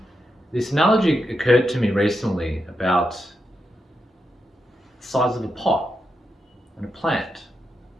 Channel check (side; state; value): both; normal; correlation 0.85